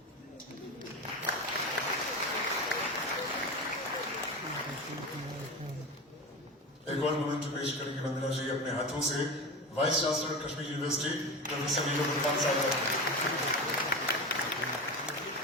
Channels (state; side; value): normal; both; correlation 0.25